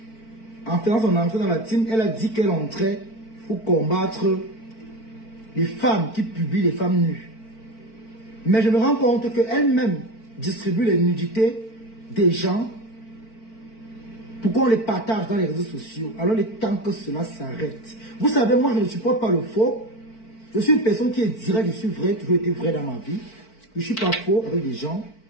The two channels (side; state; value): right; late; 4.5 ms